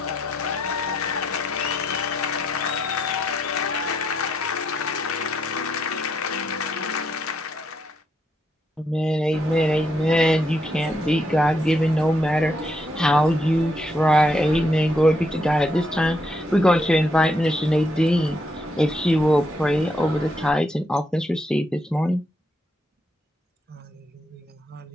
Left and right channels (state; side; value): normal; both; correlation 0.77